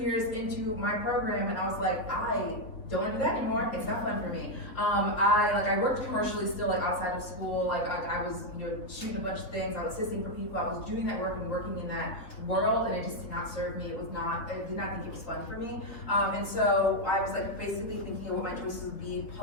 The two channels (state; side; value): late; right; 3.8 ms